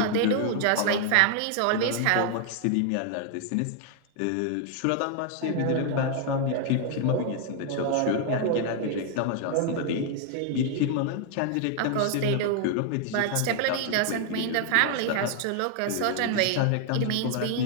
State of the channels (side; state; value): both; different; correlation 0.00